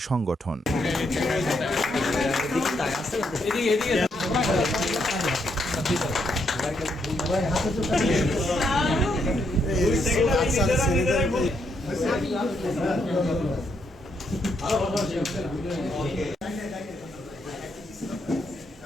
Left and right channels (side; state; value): both; normal; correlation 0.76